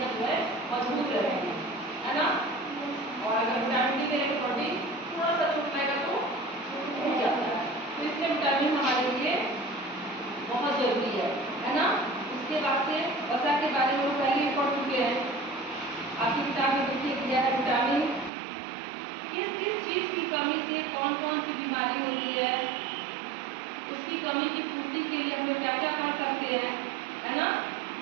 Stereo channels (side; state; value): left; drops out; at 18.3 s